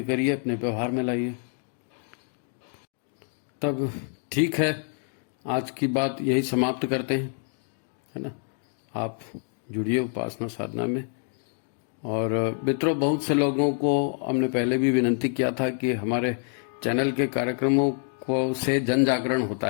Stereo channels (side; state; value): right; silent; 57 dB below the other